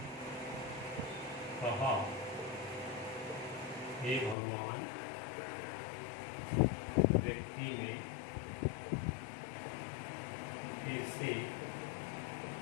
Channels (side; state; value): right; drops out; at 4.4 s